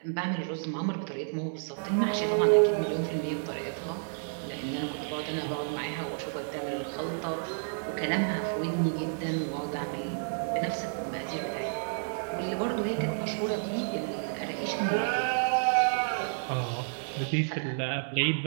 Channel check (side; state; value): left; silent; 57 dB below the other